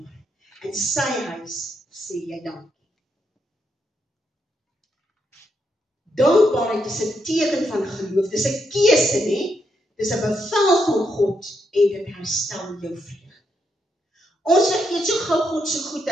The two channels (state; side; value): normal; both; correlation 0.79